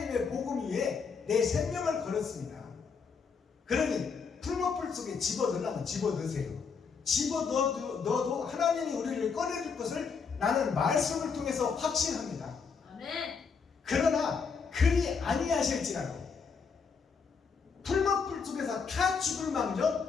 복음 위에 내 생명을 걸었습니다. 그러니 풀무불 속에 집어넣으려면 집어넣으세요. 집어넣어도 하나님이 우리를 꺼내줄 것을 나는 말씀을 통해서 확신합니다. 아멘. 그러나 그리 아니하실지라도 풀무불 속에서 타 죽을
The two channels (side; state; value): right; quieter; 5.6 dB